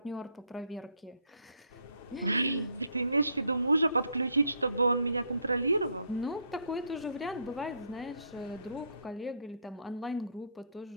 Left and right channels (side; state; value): both; inverted; correlation -0.65